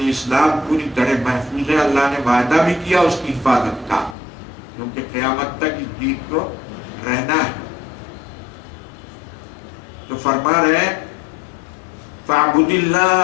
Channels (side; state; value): right; drops out; at 4.2 s